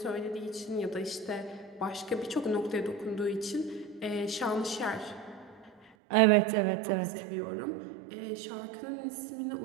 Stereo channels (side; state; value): left; drops out; at 5.9 s